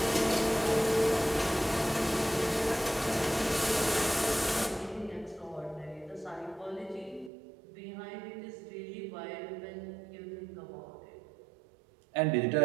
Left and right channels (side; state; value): left; drops out; at 7.3 s